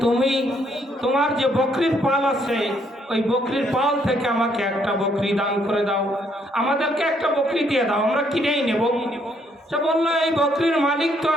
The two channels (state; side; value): normal; both; correlation 0.70